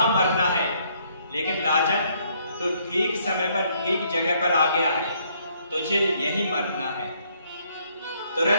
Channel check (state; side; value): inverted; both; correlation -0.68